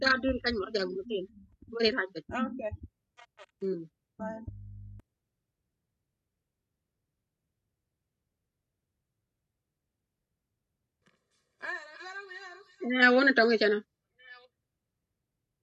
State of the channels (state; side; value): identical; both; correlation 1.00